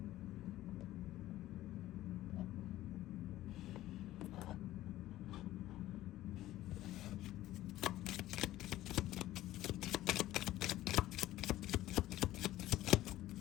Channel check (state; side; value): quieter; right; 15.0 dB